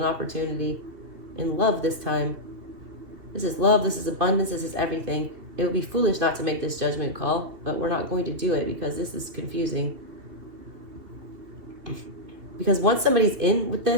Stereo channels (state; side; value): late; left; 2.8 ms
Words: opportunity. In love this time. This is love. This is abundance. This is everything. It would be foolish not to make this judgment call, but we're not going to do it because this is confusing. Because once somebody's in with